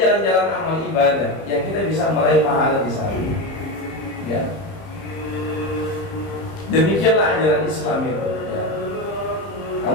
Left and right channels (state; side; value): late; right; 30 ms